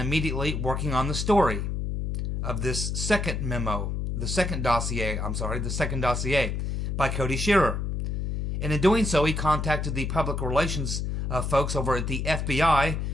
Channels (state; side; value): noise; left; hum, 2 dB below the sound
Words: working on the story of this second memo, the second dossier by Cody Shiver. And in doing so, he contacted the public relations folks over at the FBI